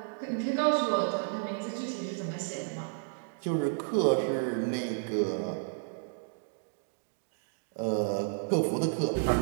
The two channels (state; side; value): silent; left; digital silence